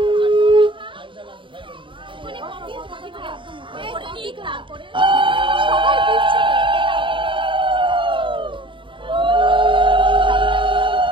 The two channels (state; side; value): late; left; 0.24 ms